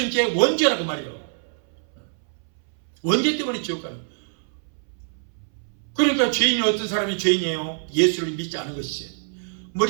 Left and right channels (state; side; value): silent; left; 62 dB below the other